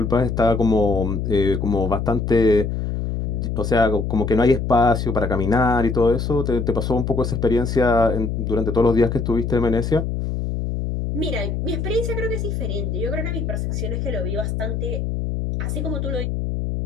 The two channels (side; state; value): left; noise; hum, 2 dB below the sound